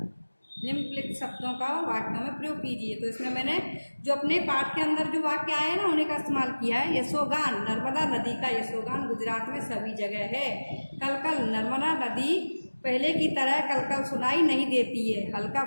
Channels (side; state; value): both; inverted; correlation -1.00